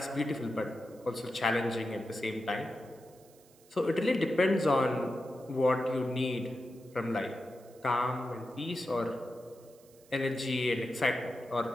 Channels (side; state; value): right; noise; hiss, 27 dB below the sound